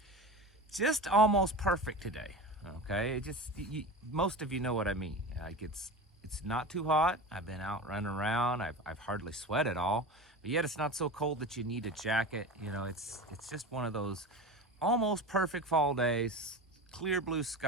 almost perfect today. Okay, most of you know what I mean. Like it's not too hot. I've been out running around. I've hardly sweat at all, but yet it's not so cold that you need a jacket. You know, it's just one of those almost perfect fall days. Clear blue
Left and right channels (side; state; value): both; normal; correlation 0.30